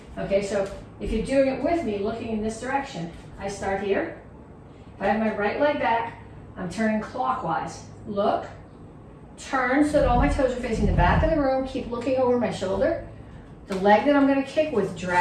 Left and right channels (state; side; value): identical; both; correlation 1.00